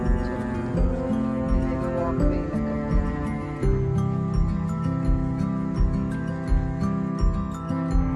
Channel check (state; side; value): identical; both; correlation 1.00